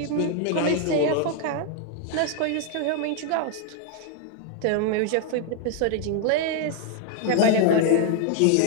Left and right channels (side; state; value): both; different; correlation 0.01